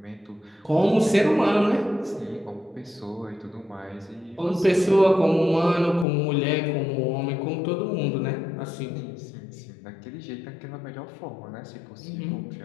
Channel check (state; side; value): drops out; right; at 6.1 s